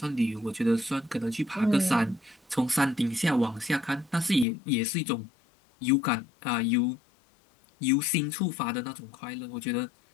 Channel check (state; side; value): drops out; right; at 4.5 s